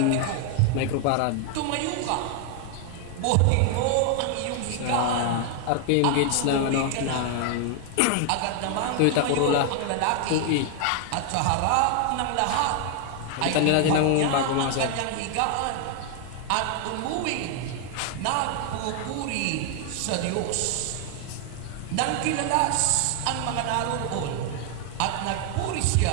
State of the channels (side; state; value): both; different; correlation 0.00